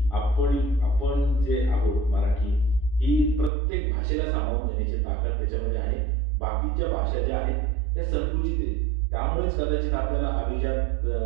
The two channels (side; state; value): left; drops out; at 3.5 s